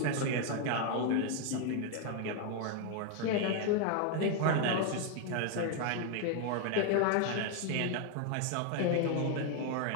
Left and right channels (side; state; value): both; different; correlation 0.01